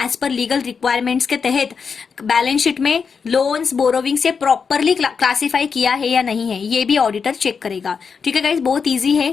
per legal requirements के तहत बैलेंस शीट में लोन्स बोरोविंग से प्रॉपरली क्लासिफाई किया है या नहीं है, ये भी ऑडिटर चेक करेगा. ठीक है गाइस, बहुत ईजी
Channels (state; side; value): quieter; right; 5.8 dB